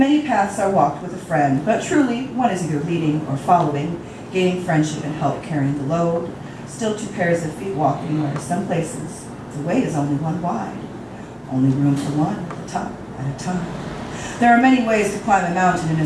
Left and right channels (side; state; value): both; identical; correlation 1.00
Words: paths are walked with a friend, but truly one is either leading or following, gaining friendship and help carrying the load. Still two pairs of feet walking where some places the way is only one wide. Only room for one at the top at a time. There are many ways to climb a mountain and